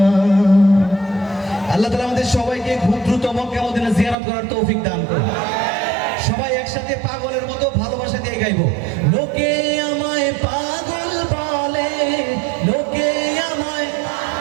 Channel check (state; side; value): drops out; left; at 4.2 s